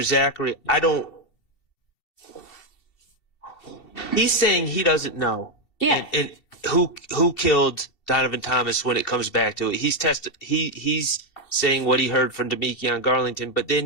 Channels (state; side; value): late; right; 2.7 ms